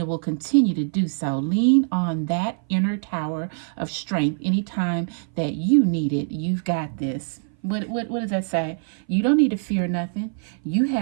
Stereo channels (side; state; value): left; silent; 58 dB below the other